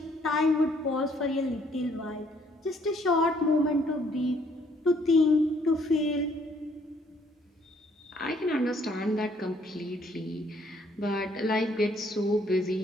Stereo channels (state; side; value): normal; both; correlation 0.65